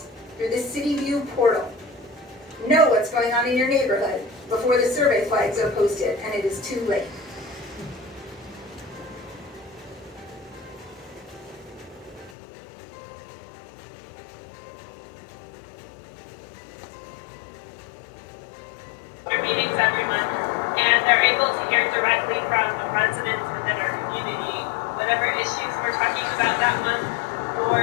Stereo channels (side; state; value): right; drops out; at 12.4 s